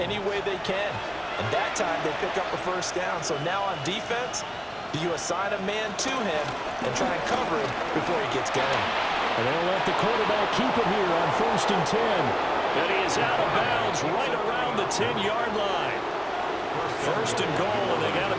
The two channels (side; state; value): both; identical; correlation 1.00